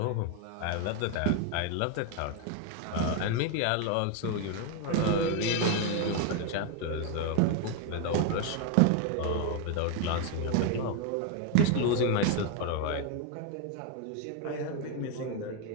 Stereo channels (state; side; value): different; both; correlation 0.01